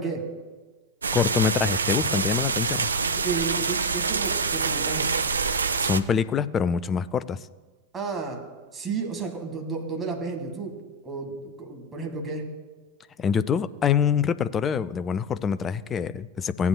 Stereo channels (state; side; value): normal; both; correlation 0.08